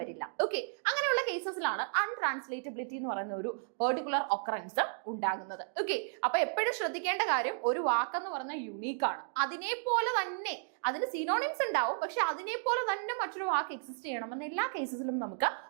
ഓക്കെ, അങ്ങനെയുള്ള കേസസിലാണ് അൺട്രാൻസ്ലേറ്റബിലിറ്റി എന്ന് പറയുന്ന ഒരു പെർട്ടിക്കുലർ ഒക്കറൻസ് ഉണ്ടാകുന്നത്. ഓക്കെ, അപ്പൊ എപ്പോഴും ശ്രദ്ധിക്കേണ്ട കാര്യം, ഒരു വാക്കെന്ന് പറഞ്ഞാൽ യുണീക്ക് ആണ്. അതിനെ പോലെ തന്നെ അതിന് സിനോണിംസ് ഉണ്ടാവും, പക്ഷെ അതിനെ പോലെ തന്നെ മറ്റൊരു വാക്ക് എക്സിസ്റ്റ് ചെയ്യണമെന്ന് എല്ലാ കേസസിലും നമുക്ക്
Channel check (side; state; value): left; silent; digital silence